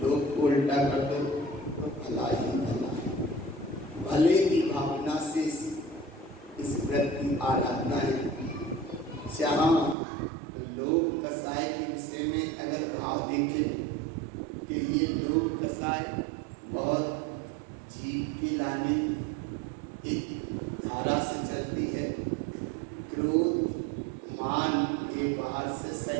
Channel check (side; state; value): left; drops out; at 10.0 s